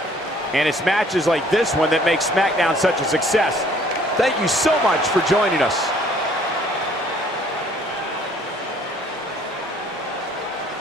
And it's matches like this one that make SmackDown such a success. Thank you so much for joining us.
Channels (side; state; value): both; normal; correlation 0.58